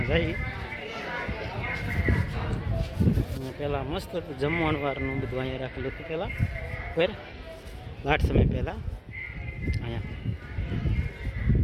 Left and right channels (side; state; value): both; identical; correlation 1.00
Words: જાય પહેલાં મસ્ત હતું જમવાનું વારનું બધું અહીંયા રાખેલું હતું પહેલાં ફેર લાટ સમય પહેલાં અહીંયા